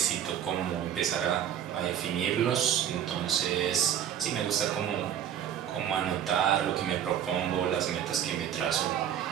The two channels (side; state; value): left; quieter; 9.8 dB